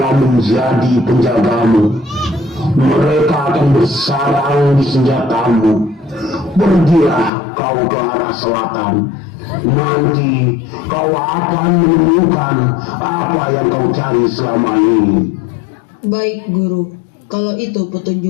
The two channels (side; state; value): right; drops out; at 7.3 s